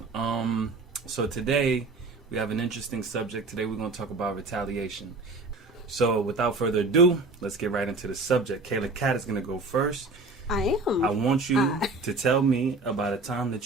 So today we have an interesting subject. Today we're going to talk about retaliation. So without further ado, let's get right into the subject. Kayla Cat is going to go first. I am. I want you to tell me about a time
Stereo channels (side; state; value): left; quieter; 3.4 dB